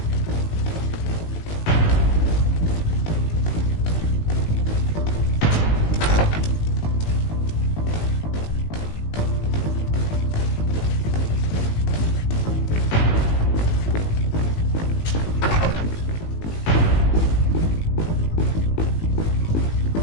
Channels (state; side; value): late; right; 19 ms